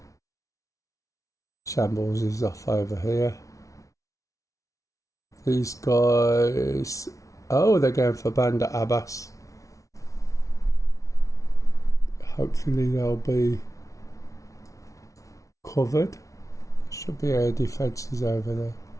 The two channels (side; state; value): right; late; 0.16 ms